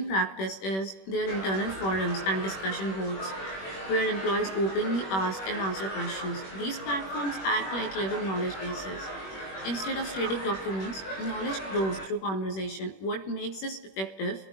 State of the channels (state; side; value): late; right; 21 ms